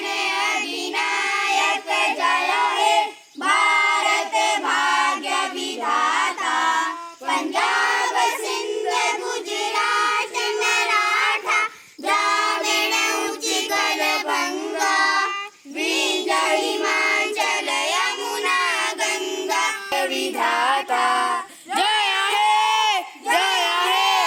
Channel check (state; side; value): identical; both; correlation 1.00